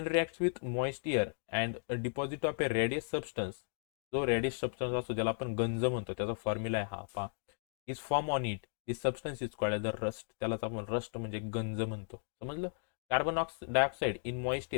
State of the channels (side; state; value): right; silent; digital silence